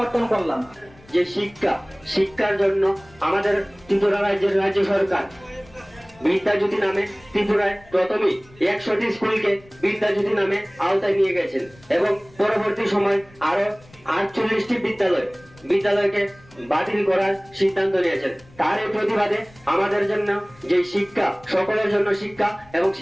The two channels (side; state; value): left; noise; rumble, 26 dB below the sound